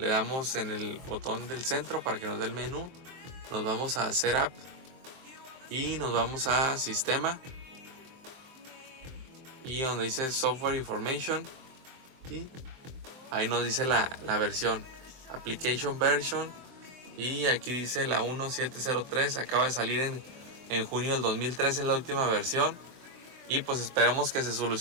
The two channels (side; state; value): left; late; 23 ms